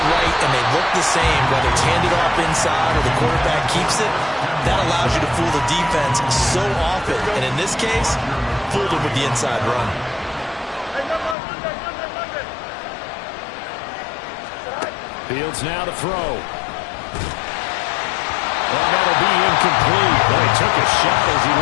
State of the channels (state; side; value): drops out; right; at 11.4 s